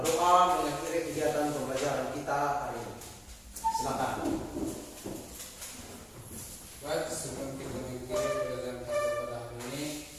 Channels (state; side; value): identical; both; correlation 1.00